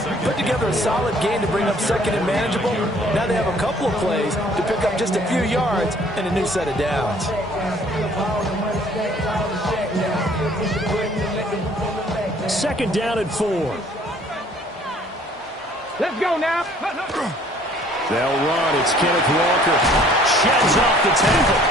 put together a solid game to bring up 2nd and manageable. Now they have a couple of plays to pick up just a few yards and a new set of downs. 2nd down and 4. Let's go now. They'll run. It's Kenneth Walker. Sheds off the tackle.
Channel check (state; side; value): normal; both; correlation 0.57